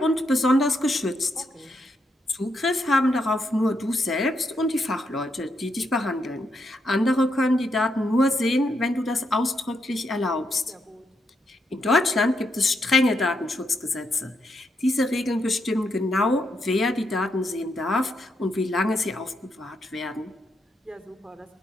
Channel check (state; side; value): normal; both; correlation 0.80